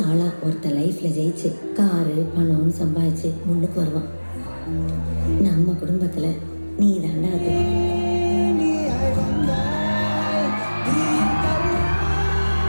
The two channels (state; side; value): inverted; both; correlation -1.00